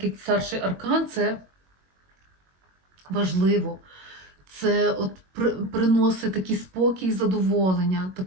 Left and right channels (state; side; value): late; left; 22 ms